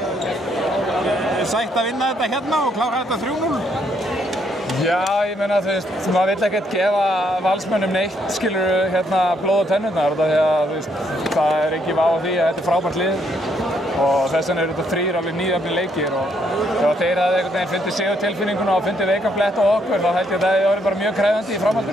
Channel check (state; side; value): normal; both; correlation 0.72